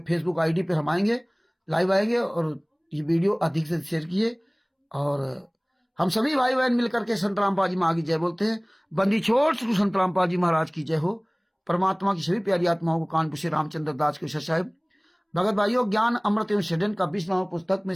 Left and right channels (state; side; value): identical; both; correlation 1.00